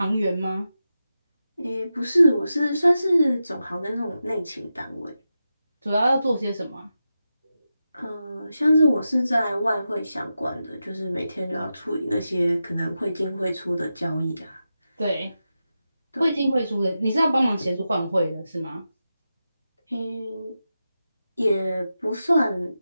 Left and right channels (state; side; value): inverted; both; correlation -0.90